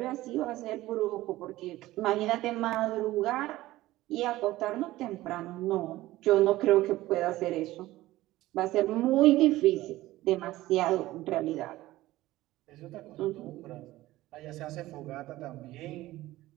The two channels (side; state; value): left; quieter; 16.8 dB